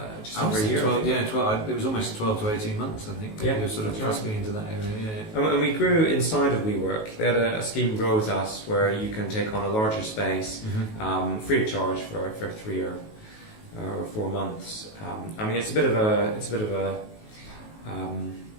just over a year. 12, it was almost 12 to 18 months, I think. Yeah, you were sort of trusting into that area. And we grew inside of WeWork. They had a scheme Grow With Us where you can take on a larger space free of charge for 3 or 4 months. It's a bit of a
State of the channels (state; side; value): late; right; 19 ms